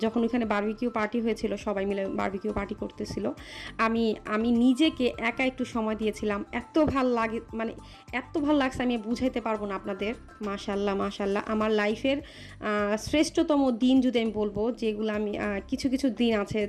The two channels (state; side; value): identical; both; correlation 1.00